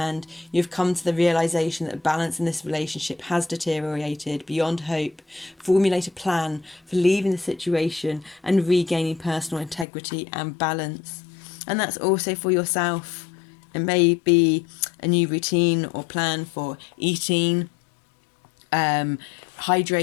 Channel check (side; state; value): right; drops out; at 9.9 s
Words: you have come to the realization that balance in this relationship has deteriorated beyond hope, formulate a plan for leaving the situation and regaining personal integrity and balance. And that's also for yourself. It may be a new routine or plan for eating,